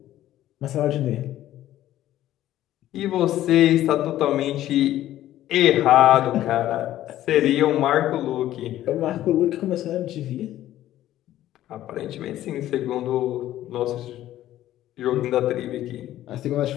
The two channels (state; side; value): quieter; right; 13.5 dB